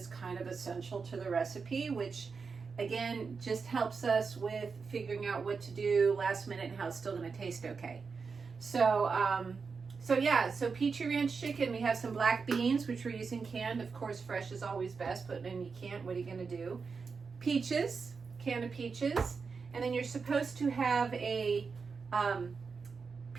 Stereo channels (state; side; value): quieter; left; 5.1 dB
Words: kind of essential to the recipe, which again just helps us with figuring out what to do last minute and how it's still going to taste okay. So Peachy Ranch chicken, we have some black beans, which we're using canned. Of course, fresh is always best, but then you can't, what are you going to do? Peaches, can of peaches, and then you're supposed to have a